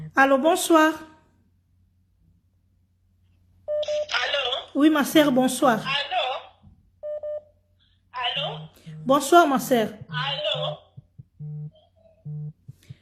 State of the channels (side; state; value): both; identical; correlation 1.00